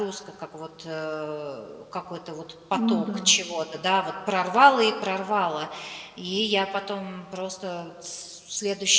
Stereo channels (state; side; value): identical; both; correlation 1.00